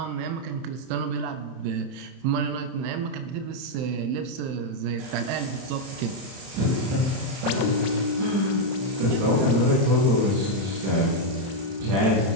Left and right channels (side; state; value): left; late; 31 ms